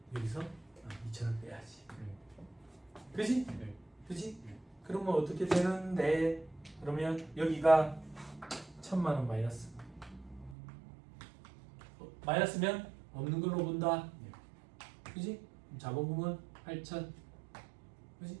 여기서 2천을 빼야지. 그지? 그지? 그러면 어떻게 되는데? 그러면 여기가 1,000만 원 마이너스. 마이너스면 없는 걸로 본다. 그지? 자본금은 8천. 그지?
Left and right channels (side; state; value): left; drops out; at 10.6 s